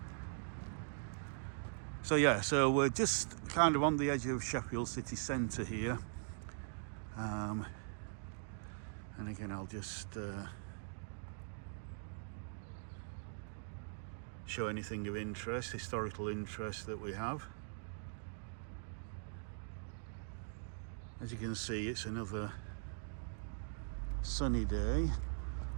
So yeah, so we're just kind of on the edge of Sheffield city centre here. And again, I'll just show anything of interest, historical interest that we have. As you can see, it's another sunny day.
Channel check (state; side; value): silent; left; digital silence